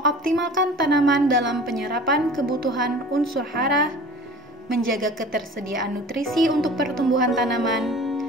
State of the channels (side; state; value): both; normal; correlation 0.42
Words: tanaman dalam penyerapan kebutuhan unsur hara, menjaga ketersediaan nutrisi untuk pertumbuhan tanaman,